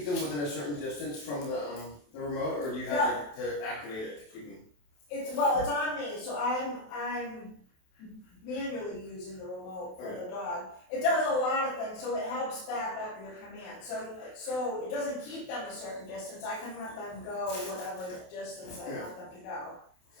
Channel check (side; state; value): right; late; 27 ms